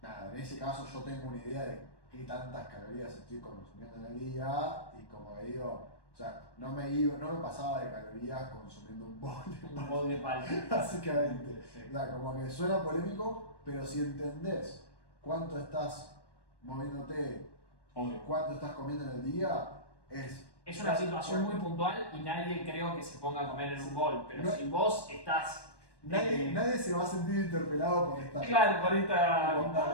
nada, en ese caso yo tengo una idea de qué tantas calorías estoy consumiendo en el día y como que digo, o sea, no me pasaba de calorías consumiendo un bol de Un bol de palta. básicamente. Sí. O sea, como que suena polémico, pero si entendés cuánto estás moviéndote, Obvio. cuánto estás comiendo en el día, es... Es una situación muy puntual y nadie creo que se ponga a comer en un bol, pero No- si vos estás. Nadie se va a sentir interpelado por esta... Claro, por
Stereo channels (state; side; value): late; right; 1.1 ms